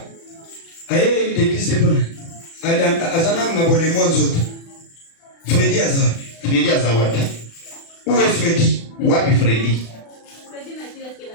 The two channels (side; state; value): right; late; 36 ms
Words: Aye l'église de Pona. Azana ngabole mwanzoto. Freddy Azar. Freddy Azar. Où est Freddy? Wapi Freddy?